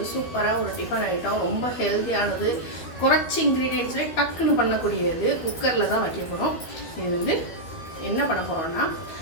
சூப்பராக ஒரு டிஃபன் ஐட்டம், ரொம்ப ஹெல்த்தியானது, குறைச்சி இன்க்ரீடியன்ட்ஸ்லேயே டக்குன்னு பண்ணக்கூடியது. குக்கரில் தான் வைக்க போகிறோம். இது வந்து என்ன பண்ண போகிறோம்னா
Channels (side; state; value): right; late; 12 ms